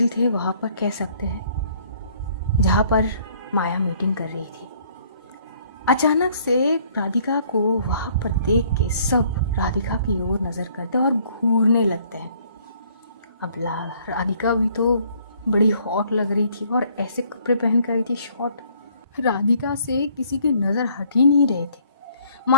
थे वहाँ पर, कह सकते हैं, जहाँ पर माया मीटिंग कर रही थी। अचानक से राधिका को वहाँ पर देख के सब राधिका की ओर नज़र करते और घूरने लगते हैं। अब राधिका भी तो बड़ी हॉट लग रही थी और ऐसे कपड़े पहन कर आई थी, शॉर्ट। राधिका से किसी की नज़र हट ही नहीं रहे थे।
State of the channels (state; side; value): inverted; both; correlation -0.61